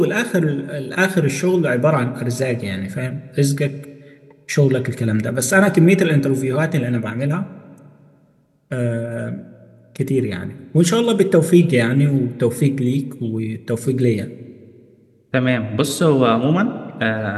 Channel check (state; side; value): identical; both; correlation 1.00